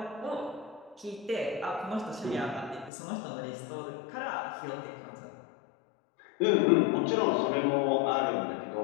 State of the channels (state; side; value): drops out; right; at 2.9 s